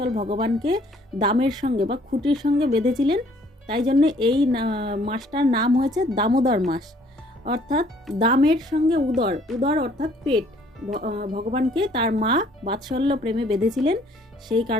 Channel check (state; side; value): normal; both; correlation 0.60